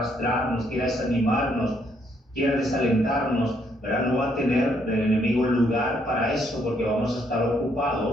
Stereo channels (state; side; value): normal; both; correlation 0.71